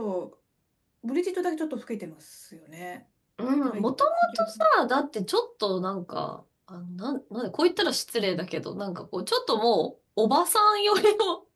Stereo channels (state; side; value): identical; both; correlation 1.00